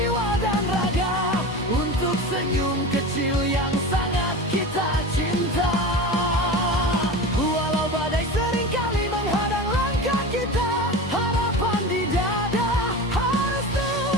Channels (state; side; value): normal; both; correlation 0.29